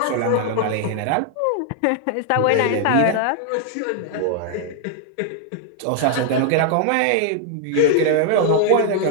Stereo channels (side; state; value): both; different; correlation 0.00